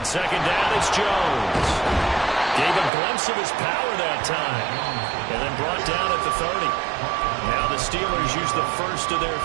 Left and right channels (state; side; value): drops out; left; at 2.9 s